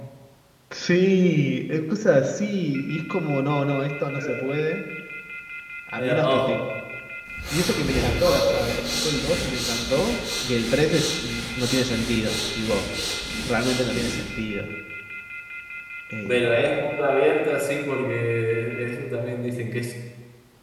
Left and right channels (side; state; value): both; identical; correlation 1.00